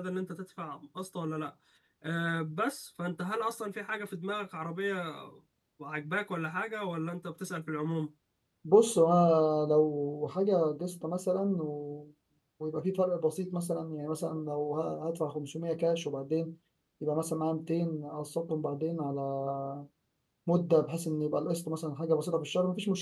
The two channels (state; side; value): identical; both; correlation 1.00